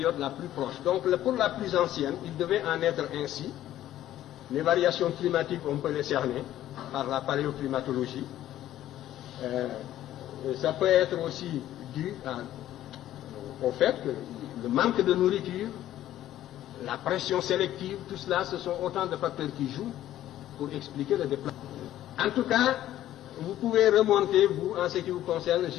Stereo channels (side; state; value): right; quieter; 13.0 dB